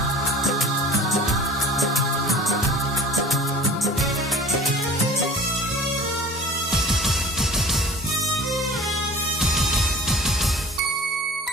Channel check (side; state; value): both; normal; correlation 0.42